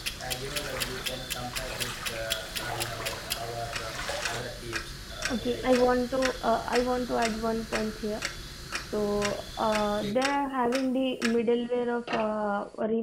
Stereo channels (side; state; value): both; identical; correlation 1.00